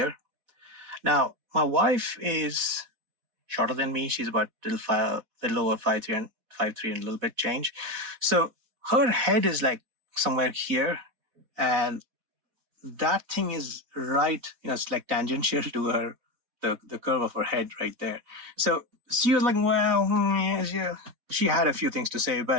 Now, my wife is shorter than me. She's about little over 5'3" and 5'3" and a little bit change. So her head is like somewhere here, and that thing is right. It's like tangential to the curve of her head right there. So she was like, well, yeah. She had a few things to say,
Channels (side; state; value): left; late; 4.1 ms